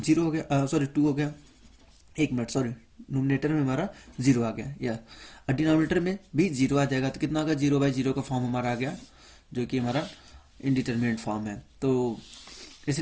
हो गया, सॉरी 2 हो गया, एक मिनट सॉरी नोमिनेटर में हमारा 0 आ गया या डिनोमिनेटर में भी 0 आ जाएगा, तो कितना होगा 0/0 का फॉर्म हमारा आ गया, जो कि हमारा इनडिटरमिनेट फॉर्म है, तो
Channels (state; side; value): identical; both; correlation 1.00